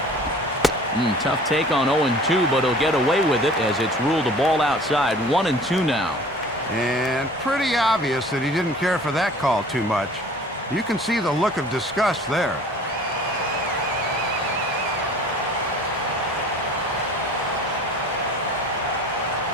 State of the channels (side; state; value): both; normal; correlation 0.47